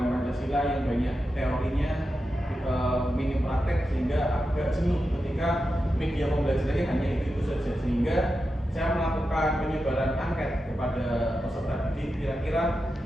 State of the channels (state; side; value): normal; both; correlation 0.90